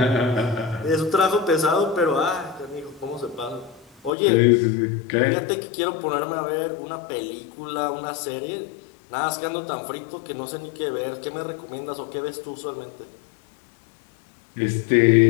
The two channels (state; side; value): drops out; right; at 4.1 s